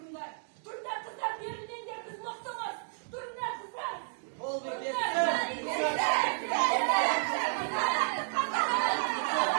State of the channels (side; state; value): left; silent; digital silence